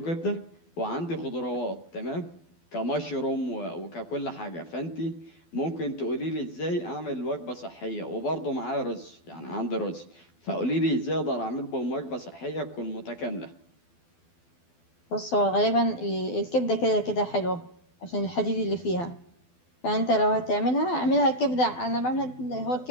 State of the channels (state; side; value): late; right; 12 ms